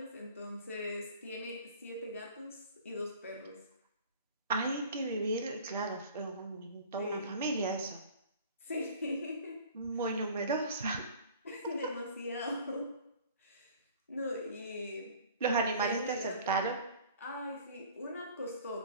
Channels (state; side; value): inverted; both; correlation -0.47